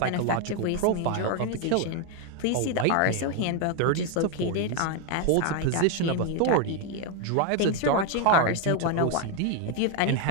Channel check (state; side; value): different; both; correlation 0.01